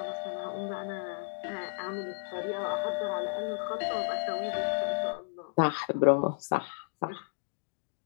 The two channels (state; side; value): silent; right; digital silence